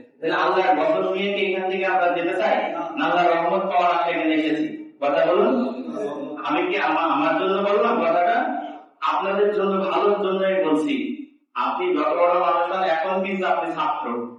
তাহলে আল্লাহর বদল নিয়ে কি এখান থেকে আমরা যেতে চাই? আল্লাহর রহমত পাওয়ার আশা এখানে এসেছি। কথা বলুন। আমি কি আমার জন্য বললাম কথাটা? আপনাদের জন্য, ভালোর জন্যই বলছি। আপনি যত বড় মানুষ হন, এখন কিন্তু আপনি ছাত্র,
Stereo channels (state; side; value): identical; both; correlation 1.00